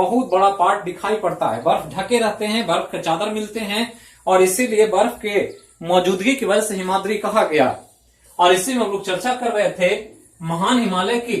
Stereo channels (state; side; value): identical; both; correlation 1.00